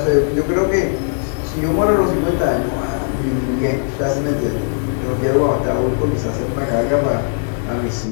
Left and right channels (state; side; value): silent; right; digital silence